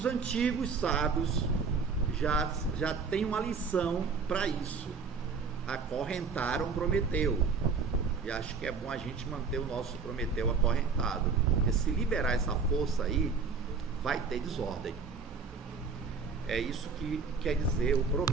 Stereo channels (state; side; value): quieter; left; 5.0 dB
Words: antigos sábios já têm uma lição para isso, acorrentaram Prometeu, e acho que é bom a gente manter o nosso Prometeu acorrentado, porque se liberar essa força aí, vai ter desordem. É isso que quer dizer o